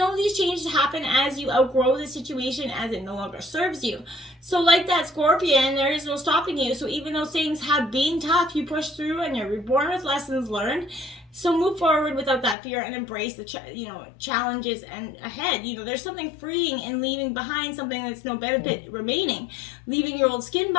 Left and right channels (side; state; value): right; drops out; at 12.6 s